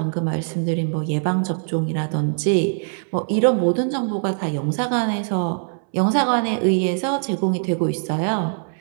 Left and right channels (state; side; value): silent; left; 64 dB below the other